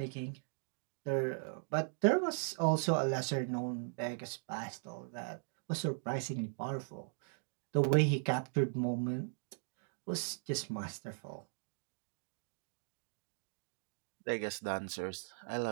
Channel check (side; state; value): left; silent; digital silence